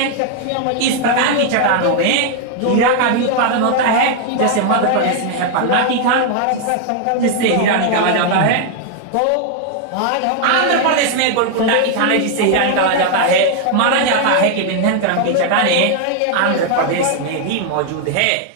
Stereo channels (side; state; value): both; different; correlation 0.00